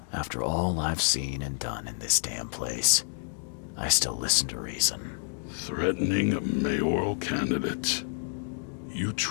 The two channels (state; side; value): silent; right; digital silence